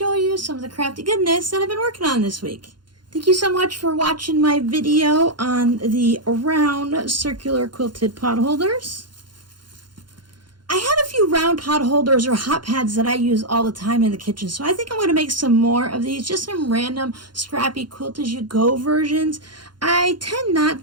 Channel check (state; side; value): late; left; 0.71 ms